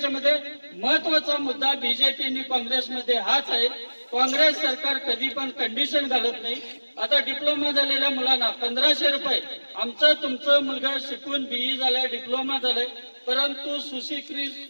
महत्वाचा मुद्दा बीजेपी आणि काँग्रेसमध्ये हाच आहे. काँग्रेस सरकार कधी पण कंडिशन घालत नाही. आता डिप्लोमा झालेल्या मुलांना 1,500 रुपये. आमचं तुमचं मुलगा शिकून BE झालाय, डिप्लोमा झालाय, परंतु सुशिक्षित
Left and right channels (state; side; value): inverted; both; correlation -1.00